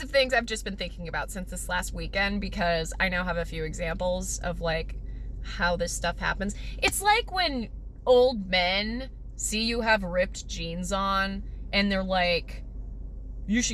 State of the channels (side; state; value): both; identical; correlation 1.00